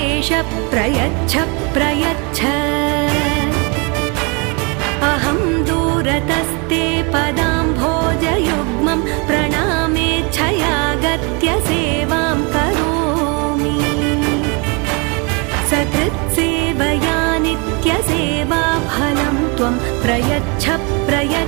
प्रयच्छ प्रयच्छ अहं दूरतस्ते पदाम्भोजयुग्मं प्रणामेच्छयागत्य सेवां करोमि सकृत्सेवया नित्यसेवाफलं त्वं प्रयच्छ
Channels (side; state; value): left; quieter; 31.6 dB